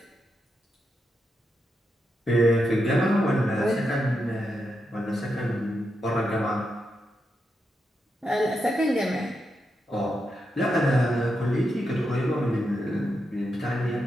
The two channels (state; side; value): normal; both; correlation 0.85